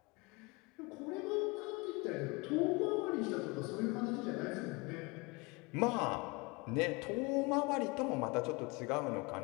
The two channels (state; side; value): quieter; right; 26.6 dB